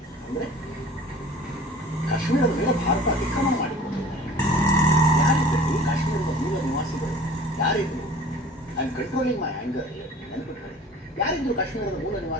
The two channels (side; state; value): both; normal; correlation 0.44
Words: ಅಂದರೆ ಕಾಶ್ಮೀರದ ಮೇಲೆ ಭಾರತ ಅತಿಕ್ರಮಣ ಮಾಡಿಕೊಂಡಿದ್ದಾರೆ. ಯಾರಿದ್ರು ಕಾಶ್ಮೀರದ ಮೂಲ ನಿವಾಸಿಗಳು? ಯಾರಿದ್ರು? I am controlling my anger, ನೆನಪಿಟ್ಕೊಳ್ಳಿ. ಯಾರಿದ್ರು ಕಾಶ್ಮೀರದ ಮೂಲ